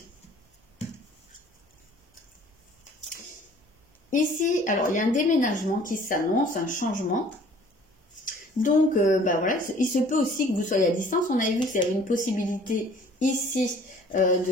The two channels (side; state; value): both; normal; correlation 0.53